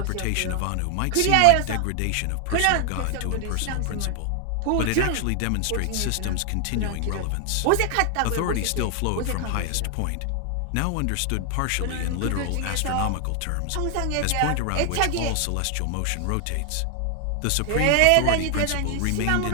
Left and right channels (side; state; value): both; different; correlation 0.00